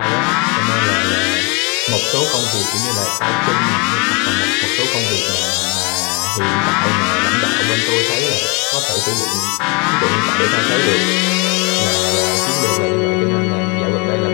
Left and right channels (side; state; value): right; quieter; 30.3 dB